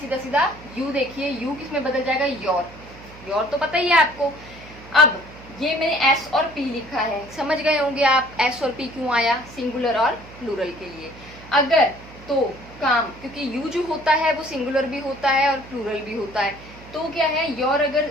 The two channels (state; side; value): noise; right; hum, 19 dB below the sound